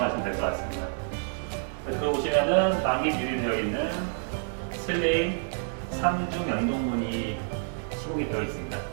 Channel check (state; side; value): silent; left; digital silence